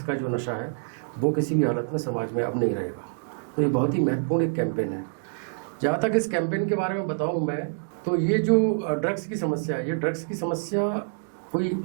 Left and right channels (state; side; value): silent; left; digital silence